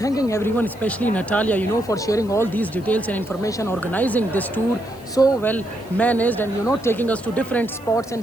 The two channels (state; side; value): noise; left; hiss, 25 dB below the sound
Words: everyone, especially Natalia, for sharing all these details and information, organizing this tour so well managed, and taking us to different spots